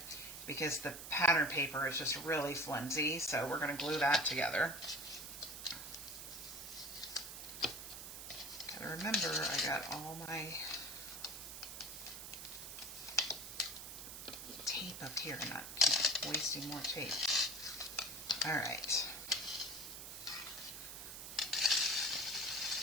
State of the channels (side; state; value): right; noise; hiss, 9 dB below the sound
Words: because the pattern paper is just really flimsy. So we're going to glue that together. Gotta remember, I got all my tape up here and not keep wasting more tape. All right.